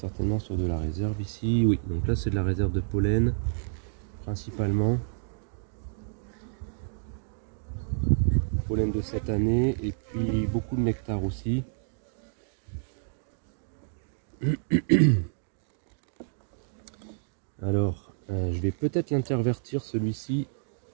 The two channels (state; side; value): silent; left; digital silence